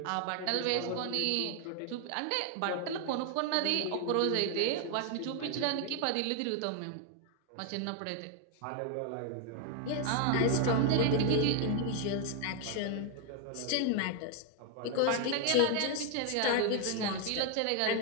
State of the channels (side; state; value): both; different; correlation 0.01